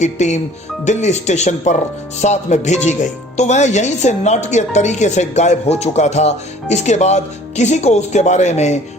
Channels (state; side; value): normal; both; correlation 0.51